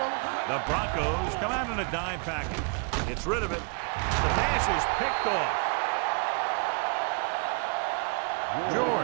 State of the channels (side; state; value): left; quieter; 39.1 dB